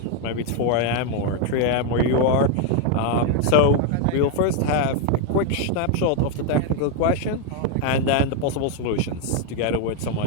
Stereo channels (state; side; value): different; both; correlation 0.01